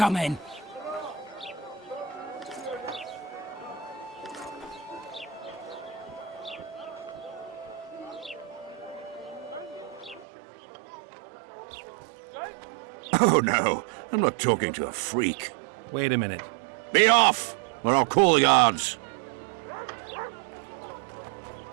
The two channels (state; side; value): drops out; left; at 10.2 s